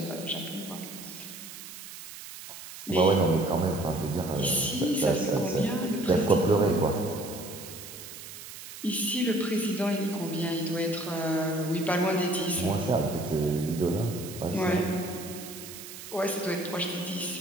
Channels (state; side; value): noise; right; hiss, 13 dB below the sound